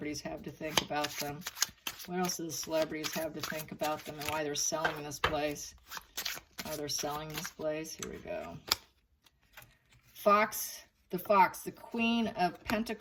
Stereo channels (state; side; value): identical; both; correlation 1.00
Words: have to think about them. What else do the celebrities have to think about them and why they're selling this place? Why they're selling this place. Here we go. The Queen of